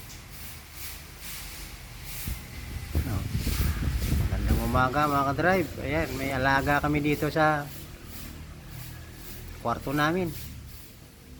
Oh, magandang umaga mga ka-drive. Ayan, may alaga kami dito sa kwarto namin.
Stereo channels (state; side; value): identical; both; correlation 1.00